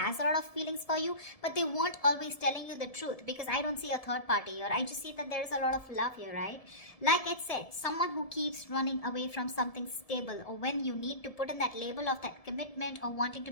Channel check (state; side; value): late; right; 1.7 ms